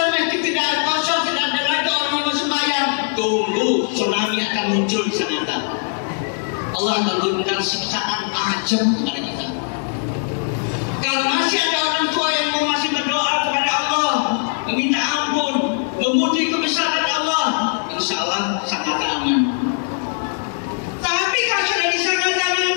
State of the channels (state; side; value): silent; right; 57 dB below the other